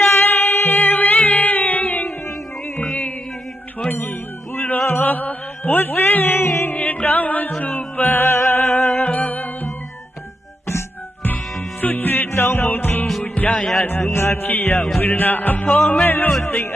ိုင်းဝေးထွန်းကြီးပူတော်ဝစင်းတောင်းစုပန်းဆွချွေတောင်းမှုသူကြရသူငါဖြစ်ရဝေဒနာအဖော်မဲ့လို့စိတ်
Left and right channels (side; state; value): both; normal; correlation 0.83